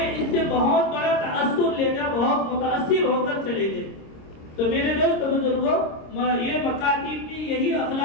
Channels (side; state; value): right; late; 26 ms